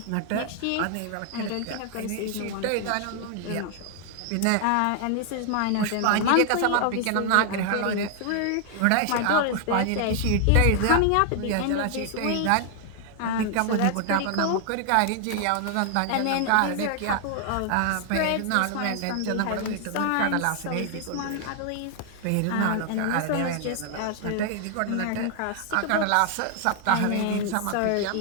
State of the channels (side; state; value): both; different; correlation 0.00